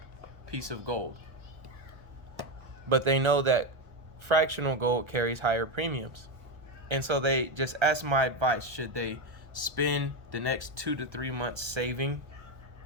piece of gold, but they know that fractional gold carries higher premiums. And so they just asked my advice. Should they spend the next 2 to 3 months saving,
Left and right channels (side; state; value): left; late; 1.1 ms